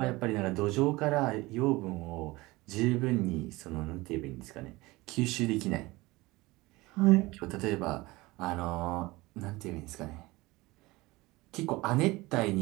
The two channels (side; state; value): left; quieter; 21.1 dB